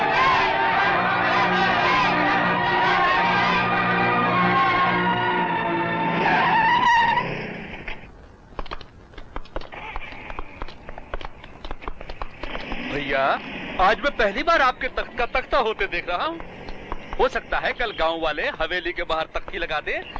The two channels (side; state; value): both; identical; correlation 1.00